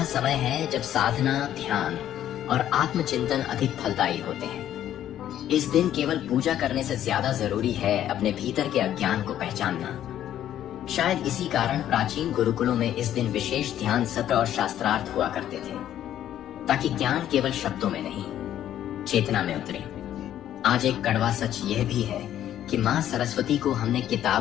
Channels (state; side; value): quieter; right; 11.4 dB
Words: समय है जब साधना, ध्यान और आत्मचिंतन अधिक फलदायी होते हैं। इस दिन केवल पूजा करने से ज्यादा जरूरी है अपने भीतर के अज्ञान को पहचानना। शायद इसी कारण प्राचीन गुरुकुलों में इस दिन विशेष ध्यान सत्र और शास्त्रार्थ हुआ करते थे, ताकि ज्ञान केवल शब्दों में नहीं, चेतना में उतरे। आज एक कड़वा सच यह भी है कि माँ सरस्वती को हमने